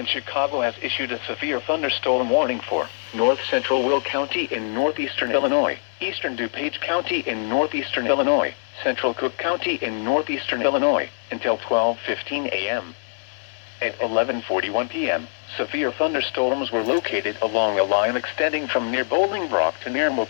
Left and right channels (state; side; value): silent; right; digital silence